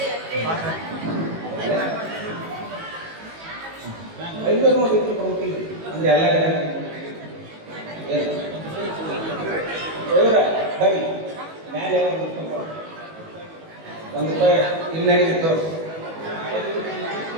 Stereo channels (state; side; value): late; left; 18 ms